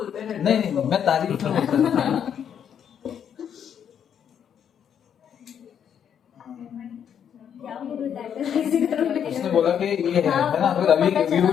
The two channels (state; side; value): quieter; right; 8.6 dB